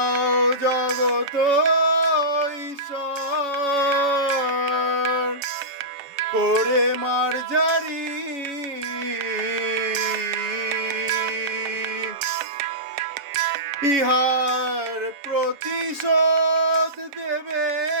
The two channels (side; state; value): left; late; 7.1 ms